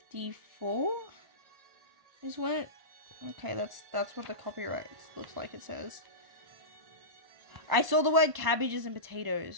Is when it... Okay, that's what the copyright looks like, it says. I saw the word cabbages and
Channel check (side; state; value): left; late; 1.0 ms